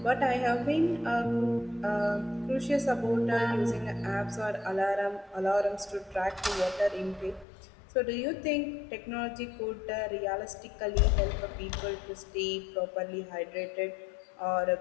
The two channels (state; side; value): drops out; right; at 7.5 s